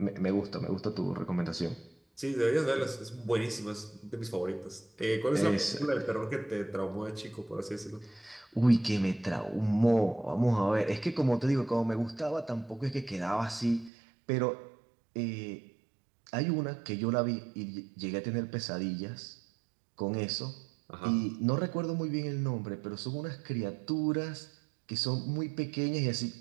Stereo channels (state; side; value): drops out; left; at 13.9 s